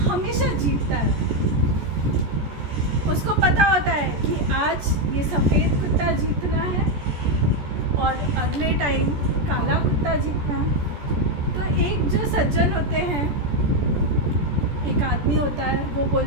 हमेशा जीतता है। उसको पता होता है कि आज ये सफ़ेद कुत्ता जीतना है और अगले टाइम काला कुत्ता जीतना है। तो एक जो सज्जन होते हैं, एक आदमी होता है, वो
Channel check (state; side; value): late; left; 14 ms